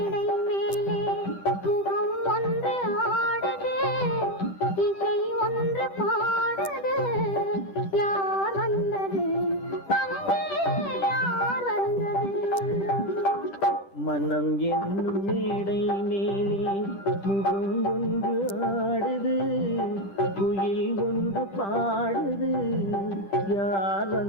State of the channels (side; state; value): right; late; 10 ms